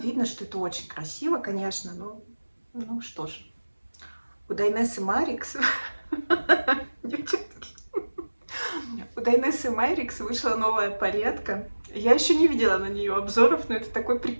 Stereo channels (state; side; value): inverted; both; correlation -1.00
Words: что это очень красиво, конечно. Ну что ж. У Дайнессы Марикс... У Дайнессы Марикс вышла новая палетка. Я еще не видела на нее обзоров, но это такой